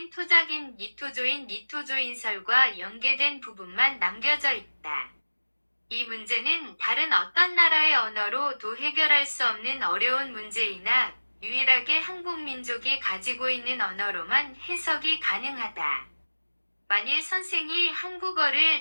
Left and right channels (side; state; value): both; inverted; correlation -1.00